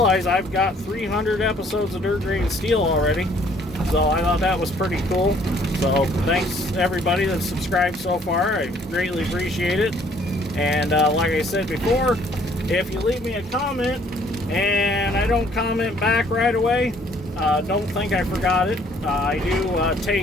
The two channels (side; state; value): both; normal; correlation 0.61